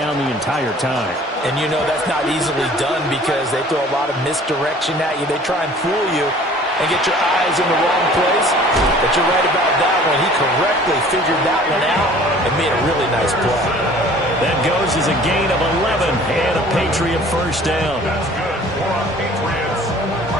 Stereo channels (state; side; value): normal; both; correlation 0.50